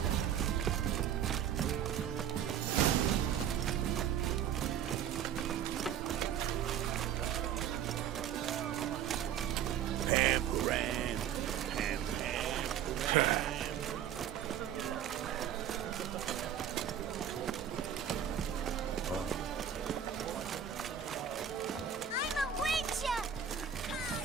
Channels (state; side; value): quieter; left; 9.1 dB